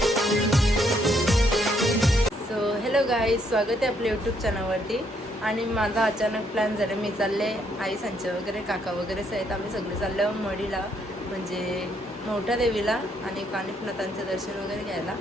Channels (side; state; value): both; normal; correlation 0.72